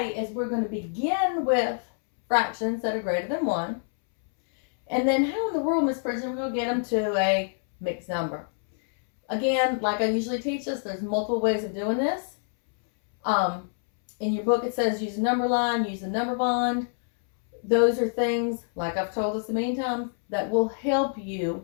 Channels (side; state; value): right; silent; 61 dB below the other